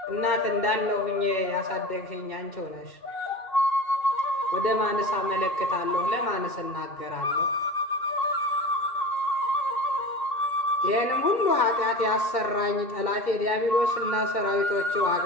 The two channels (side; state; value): right; late; 2.3 ms